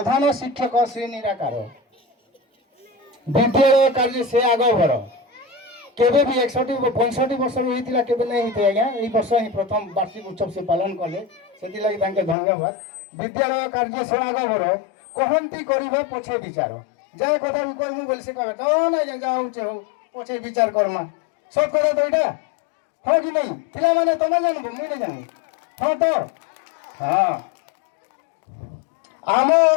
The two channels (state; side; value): drops out; right; at 12.4 s